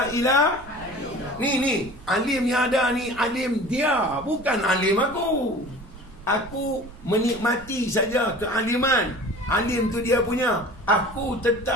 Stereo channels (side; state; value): right; noise; rumble, 18 dB below the sound